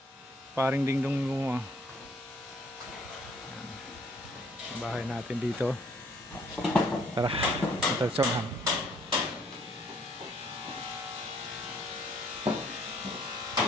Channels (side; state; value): both; normal; correlation 0.63